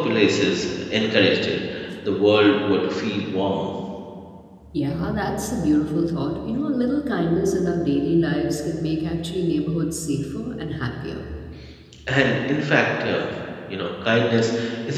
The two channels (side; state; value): both; identical; correlation 1.00